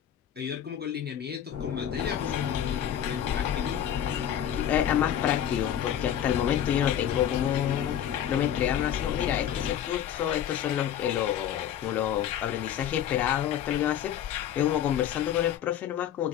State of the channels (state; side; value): quieter; right; 10.2 dB